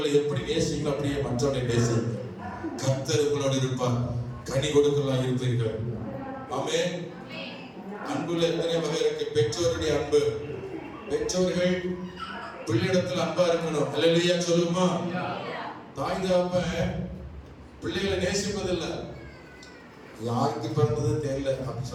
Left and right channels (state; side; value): identical; both; correlation 1.00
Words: எப்படி நேசிங்களோ அப்படியே மற்றவர்களை நேசிங்க. கர்த்தர் உங்களோடு இருப்பார், கனி கொடுக்கலாம் இருப்பீர்கள். ஆமென். அன்புல எத்தனை வகை இருக்கு. பெற்றோருடைய அன்பு, பெற்றோர்கள் பிள்ளையிடத்தில் அன்பா இருக்கணும். அல்லேலூயா சொல்லுமா. தாய் தகப்பன் பிள்ளைகளை நேசிப்பதில்லை. யாருக்கு பிறந்தது தெரியல அப்படி